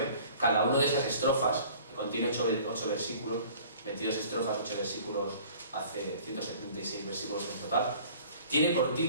cada una de esas estrofas, que contiene 8 versículos, 22 estrofas, 8 versículos, hace 176 versículos en total, tiene por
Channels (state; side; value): inverted; both; correlation -0.49